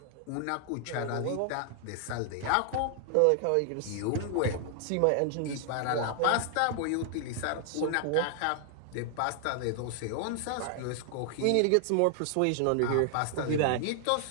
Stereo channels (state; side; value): different; both; correlation 0.00